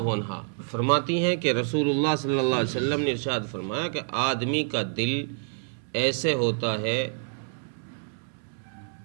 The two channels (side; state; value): left; silent; 60 dB below the other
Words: عنہا فرماتی ہیں کہ رسول اللہ صلی اللہ علیہ وسلم نے ارشاد فرمایا کہ آدمی کا دل ایسے ہوتا ہے